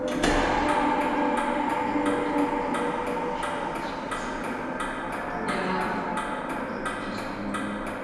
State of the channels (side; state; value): both; identical; correlation 1.00